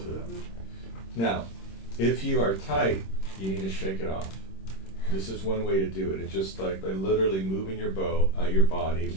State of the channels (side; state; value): right; late; 26 ms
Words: of them. Now, if you are tight, you need to shake it off. This is one way to do it. It's just like by literally moving your bow, your body